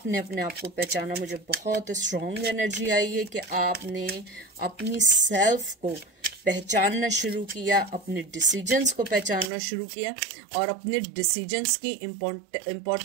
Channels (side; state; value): left; drops out; at 9.5 s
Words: अपने आप को पहचाना। मुझे बहुत स्ट्रॉन्ग एनर्जी आई है कि आपने अपनी सेल्फ को पहचानना शुरू किया, अपने डिसीजंस को पहचानना शुरू किया और अपने डिसीजंस की